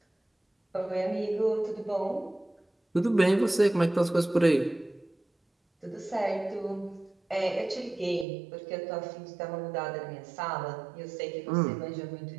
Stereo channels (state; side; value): drops out; left; at 8.2 s